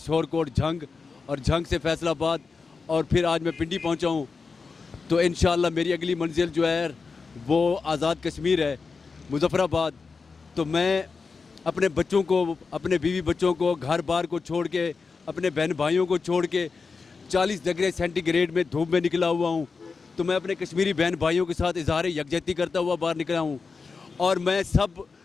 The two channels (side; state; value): right; quieter; 4.7 dB